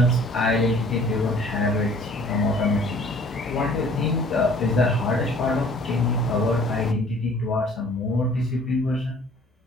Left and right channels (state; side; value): normal; both; correlation 0.53